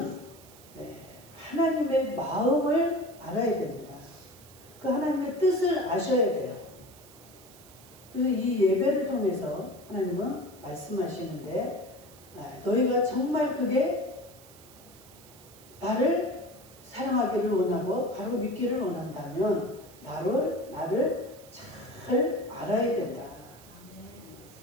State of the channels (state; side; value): noise; right; hiss, 22 dB below the sound